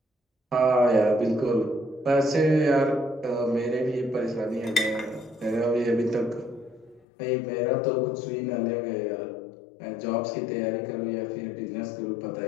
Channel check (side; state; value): right; drops out; at 7.1 s